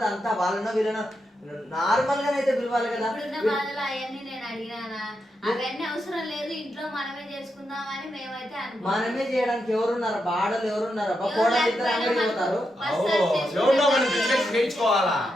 అంతా వాళ్ళనో వీళ్ళనో నార్మల్ గానైతే పిలవాలి కదా. అవన్నీ నేను అడిగినా అవన్నీ అవసరం లేదు, ఇంట్లో మనమే చేసుకుందామని మేమైతే మనమే చేయడానికి ఎవరున్నారు? బాడలు ఎవరున్నారు? పోతారు.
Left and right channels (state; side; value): normal; both; correlation 0.85